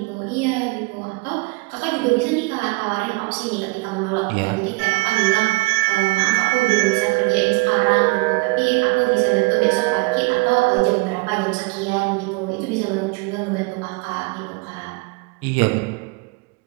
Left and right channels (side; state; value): left; quieter; 26.0 dB